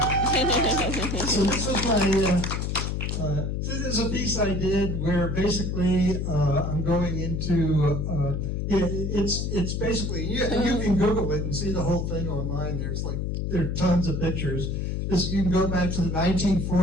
So this is my. This is a piece I did where basically I'm going into. It's basically you can Google it and see the whole thing online. There are tons of pictures. You can go back to the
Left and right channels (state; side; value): noise; left; hum, 1 dB below the sound